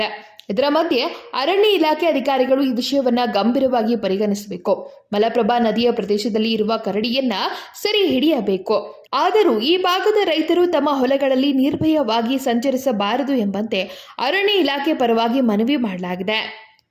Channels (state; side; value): identical; both; correlation 1.00